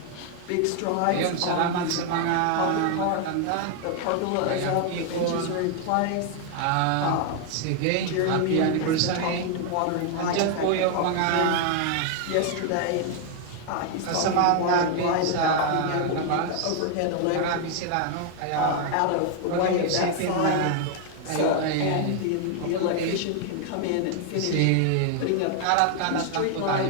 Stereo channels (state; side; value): different; both; correlation 0.00